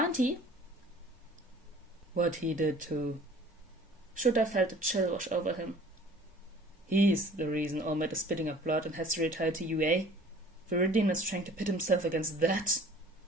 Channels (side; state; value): both; normal; correlation 0.49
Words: What he did to... Shota felt a chill wash over him. He's the reason All Might is spitting up blood and has to retire to UA. Veridian is trying to pit himself against that.